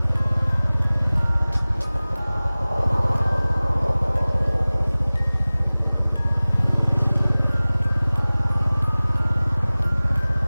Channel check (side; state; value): both; inverted; correlation -0.99